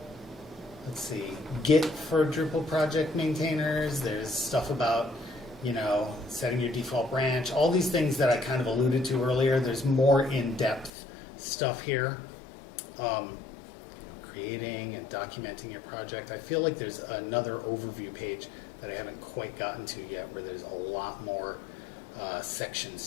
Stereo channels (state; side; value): drops out; right; at 10.9 s